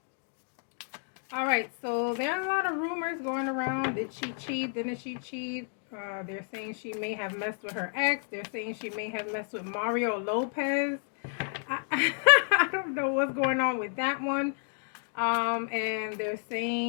Alright, so there are a lot of rumors going around. Did she cheat? Didn't she cheat? They're saying she may have messed with her ex. They're saying she may have messed with Mario Lopez. I don't know what's going on with that one. And they're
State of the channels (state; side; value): silent; right; 57 dB below the other